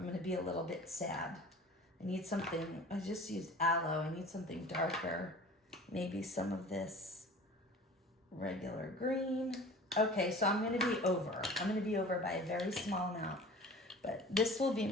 gonna be a little bit sad. I need something, I just used aloe. I need something darker. Maybe some of this regular green. Okay, so I'm gonna be over. I'm gonna be over by a very small amount. But this will be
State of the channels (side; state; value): both; normal; correlation 0.42